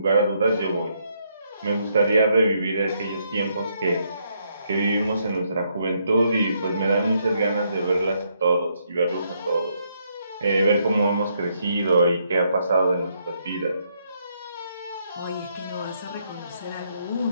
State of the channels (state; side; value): inverted; both; correlation -0.74